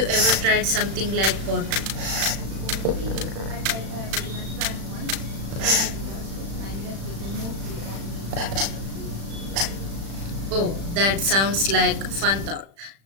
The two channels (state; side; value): late; left; 36 ms